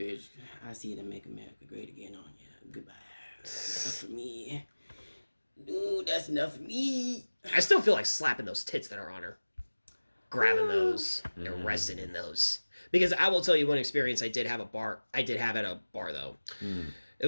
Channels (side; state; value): both; inverted; correlation -1.00